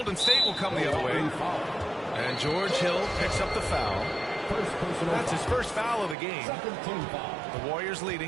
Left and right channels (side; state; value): left; drops out; at 6.2 s